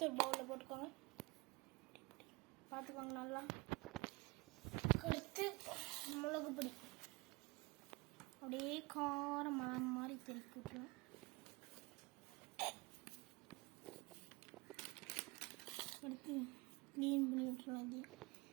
ஒரு பவுலில் போட்டுக்கோங்க. பார்த்துக்கோங்க நல்லா. அடுத்து மிளகு பொடி அப்படியே காரம் மாதிரி திருப்பி விட்டுருவோம். எடுத்து க்ளீன் பண்ணி விட்டுருவோம். அது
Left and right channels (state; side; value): quieter; left; 25.9 dB